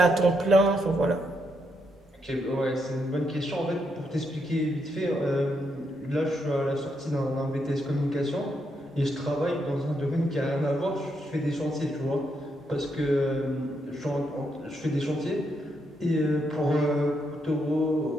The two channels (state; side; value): normal; both; correlation 0.79